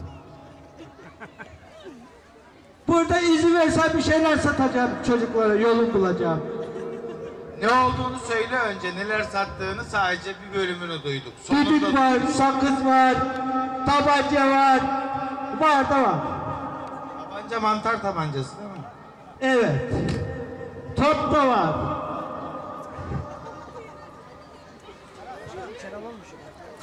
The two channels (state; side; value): identical; both; correlation 1.00